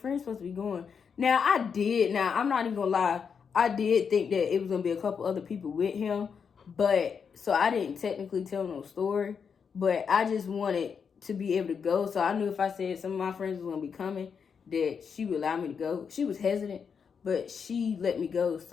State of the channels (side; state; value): right; quieter; 6.4 dB